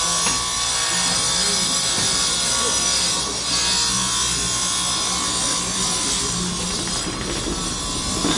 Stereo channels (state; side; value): identical; both; correlation 1.00